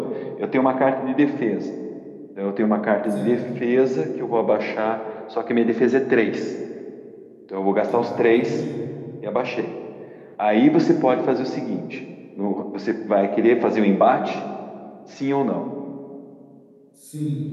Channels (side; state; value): both; identical; correlation 1.00